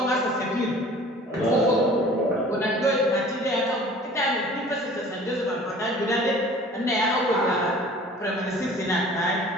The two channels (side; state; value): both; normal; correlation 0.47